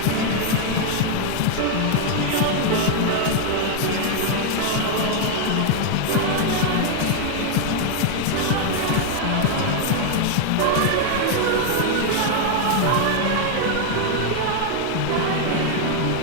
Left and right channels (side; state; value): both; different; correlation 0.00